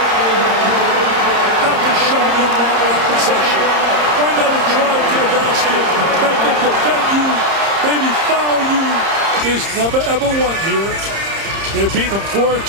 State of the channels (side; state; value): left; late; 30 ms